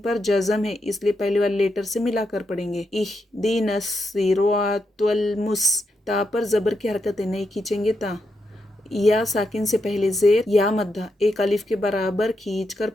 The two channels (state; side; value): normal; both; correlation 0.83